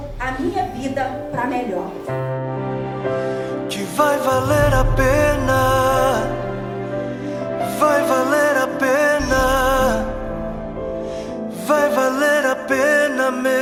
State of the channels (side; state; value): both; identical; correlation 1.00